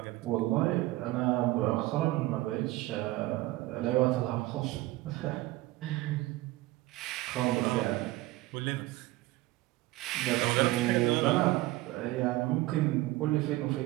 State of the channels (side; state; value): left; quieter; 18.5 dB